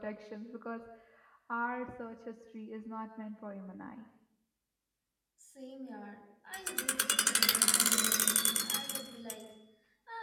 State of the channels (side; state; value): both; identical; correlation 1.00